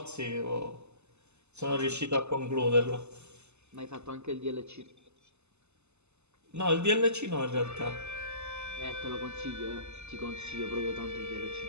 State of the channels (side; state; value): left; late; 0.81 ms